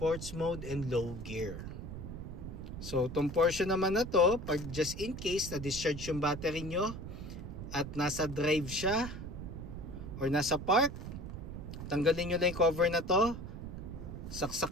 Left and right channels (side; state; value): right; noise; rumble, 8 dB below the sound